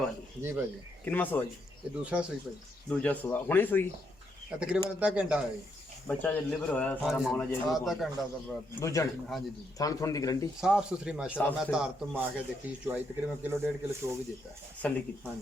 जी भाई। किनवा सुआ जी? ये दूसरा सुई भाई, दूजा सुआ हुणे सुई तकरीबन आधा घंटा है जी। बच्चा जो डिलीवर होया सारा मामला जे आधा घंटा दा बाद। दूजन हाँ जी जी। थान थोन दी गारंटी साफ सुथरी माशाल्लाह। मैं तार तो मार के देखी चुआई तकरीबन किलो 1.5 किलो चो भी देता है। सल्ली की हाँ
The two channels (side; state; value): both; normal; correlation 0.77